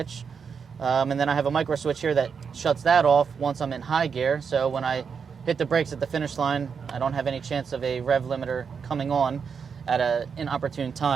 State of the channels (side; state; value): left; quieter; 6.2 dB